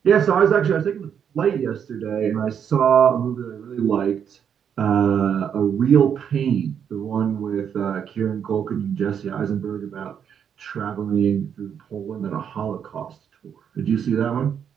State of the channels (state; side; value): quieter; left; 8.1 dB